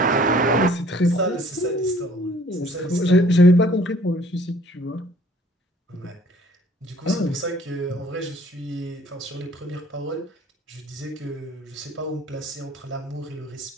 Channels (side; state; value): both; normal; correlation 0.56